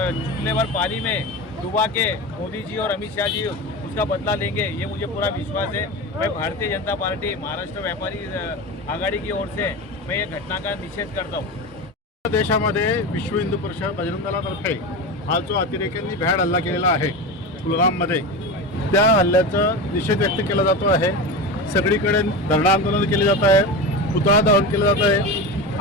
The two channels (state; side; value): normal; both; correlation 0.24